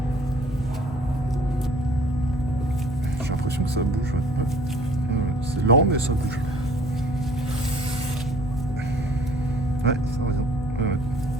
J'ai l'impression que ça bouge. C'est lent, mais ça bouge. Ouais, ça va bien. Ouais.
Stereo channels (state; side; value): normal; both; correlation 0.54